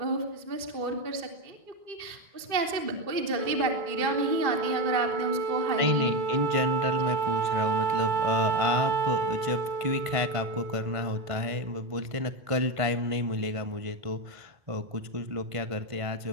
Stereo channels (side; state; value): left; late; 1.5 ms